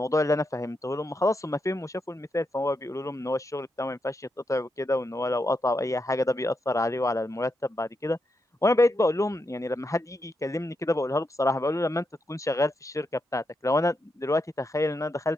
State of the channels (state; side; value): normal; both; correlation 0.84